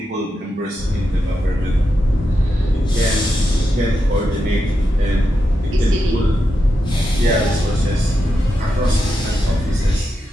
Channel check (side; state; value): both; normal; correlation 0.87